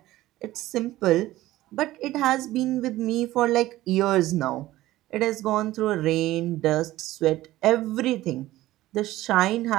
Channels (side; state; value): left; quieter; 16.1 dB